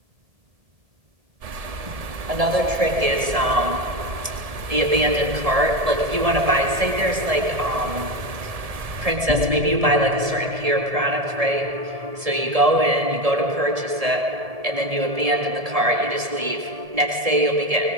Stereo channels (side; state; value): left; late; 1.7 ms